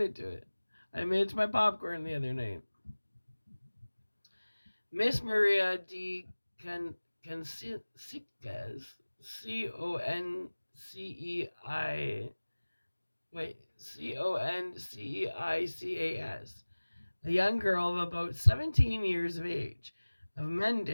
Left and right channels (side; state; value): both; inverted; correlation -1.00